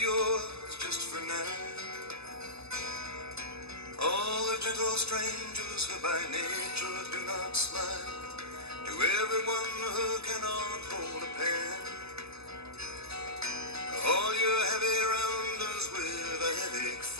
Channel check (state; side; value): late; left; 0.79 ms